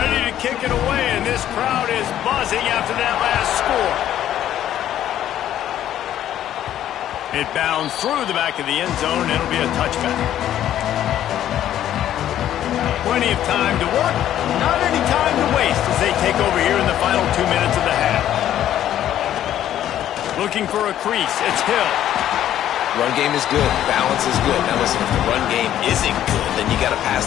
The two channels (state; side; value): quieter; right; 11.6 dB